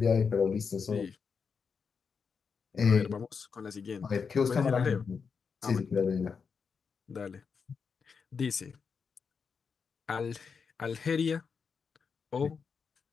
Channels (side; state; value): right; quieter; 5.8 dB